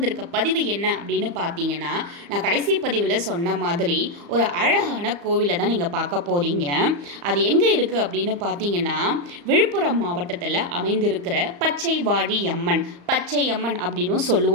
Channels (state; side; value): late; left; 35 ms